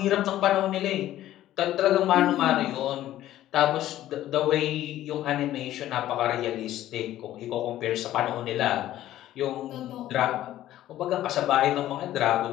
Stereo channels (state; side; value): quieter; right; 13.6 dB